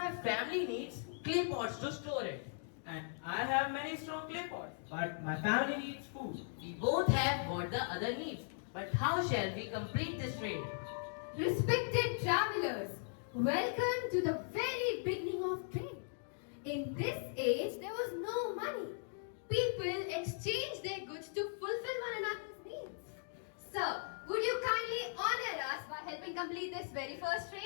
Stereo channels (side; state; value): right; silent; digital silence